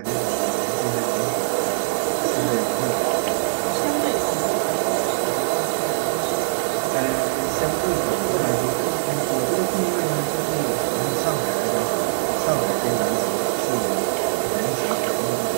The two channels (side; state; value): left; silent; digital silence